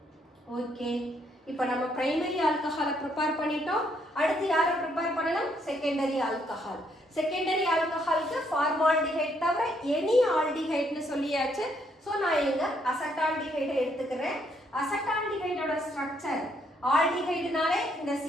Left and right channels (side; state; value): both; normal; correlation 0.71